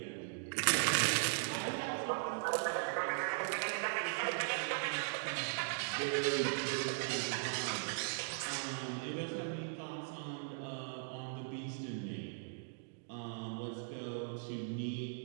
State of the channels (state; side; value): silent; left; digital silence